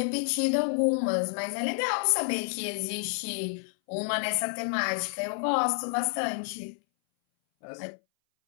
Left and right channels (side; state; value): right; silent; 58 dB below the other